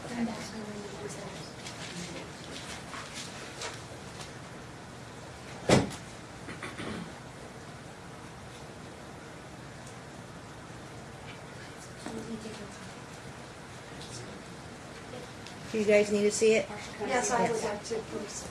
and that's her when it was there. Totally different. Do you guys need to see it? Yes, I would Yes. like to, please.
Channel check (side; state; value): both; identical; correlation 1.00